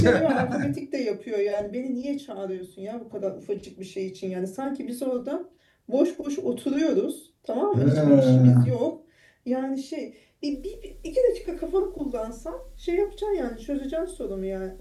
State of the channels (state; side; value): identical; both; correlation 1.00